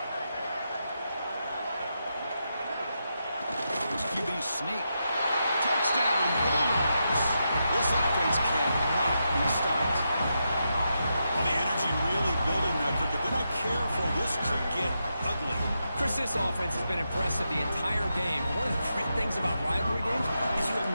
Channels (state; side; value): inverted; both; correlation -0.85